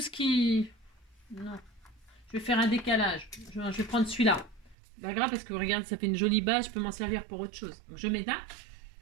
ce qui... Non. Je vais faire un décalage. Je vais prendre celui-là. Pas grave parce que regarde, ça fait une jolie base. Je peux m'en servir pour autre chose. Donc je mets là.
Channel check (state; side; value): drops out; left; at 4.8 s